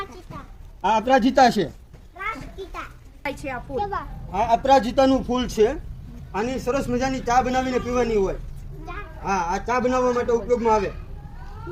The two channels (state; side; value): identical; both; correlation 1.00